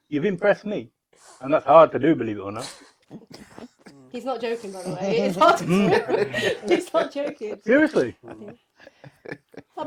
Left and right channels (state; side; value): identical; both; correlation 1.00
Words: You've impressed me. And that's hard to do, believe it or not. He's not joking, by the way. It's hard to do. He's not joking. Seriously. How